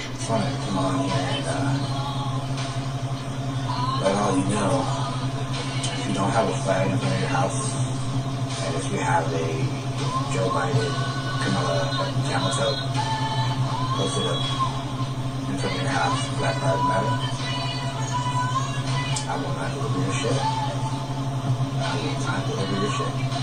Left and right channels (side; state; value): both; identical; correlation 1.00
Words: Fine, come on here and let all you know, if you don't have a flag in front of your house, and if you have a Joe Biden, Kamala, camel toe posted up in front of your house, Black Lives Matter, I will not deliver your shit. I will not deliver your shit.